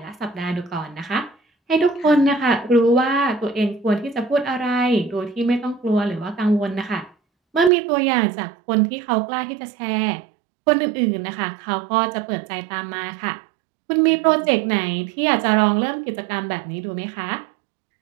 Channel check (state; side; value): drops out; left; at 7.7 s